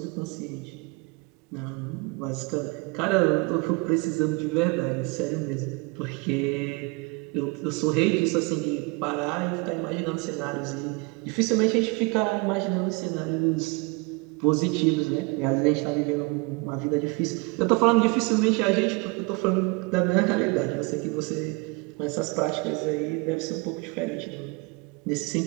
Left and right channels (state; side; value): quieter; left; 28.3 dB